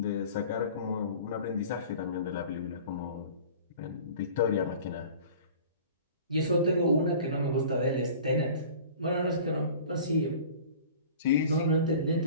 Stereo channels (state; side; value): inverted; both; correlation -0.43